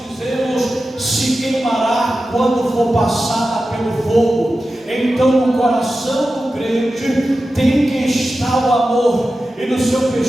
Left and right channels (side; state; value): both; normal; correlation 0.93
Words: se queimará quando for passada pelo fogo. Então no coração do crente tem que estar o amor, e no seu